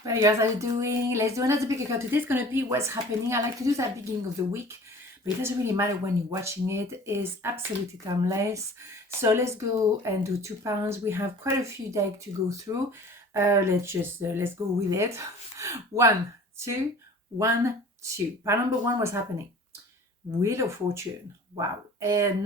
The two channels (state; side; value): normal; both; correlation 0.44